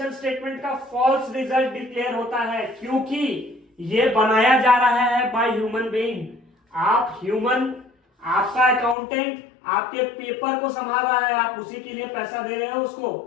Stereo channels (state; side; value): drops out; right; at 9.0 s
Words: स्टेटमेंट का फॉल्स रिजल्ट डिक्लेयर होता है, क्योंकि यह बनाया जा रहा है बाय ह्यूमन बीइंग। आप ह्यूमन, आपका अकाउंटेंट आपके पेपर को संभाल रहा है, आप उसी के लिए पैसा दे रहे हो उसको,